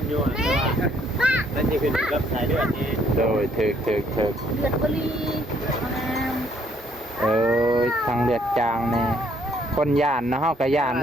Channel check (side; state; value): both; normal; correlation 0.66